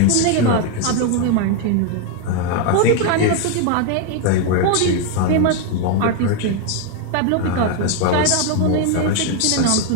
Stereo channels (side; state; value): both; different; correlation 0.01